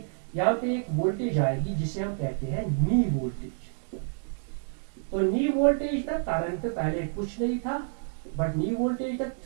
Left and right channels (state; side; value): silent; left; digital silence